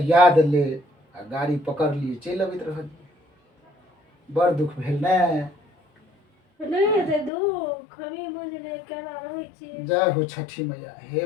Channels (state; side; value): drops out; right; at 7.3 s